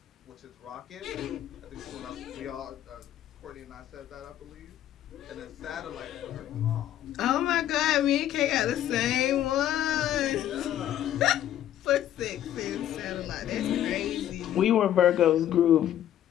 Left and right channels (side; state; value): right; quieter; 11.7 dB